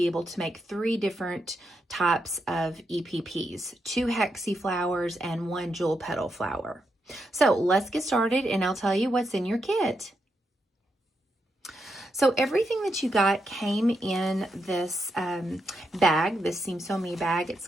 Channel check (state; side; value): normal; both; correlation 0.83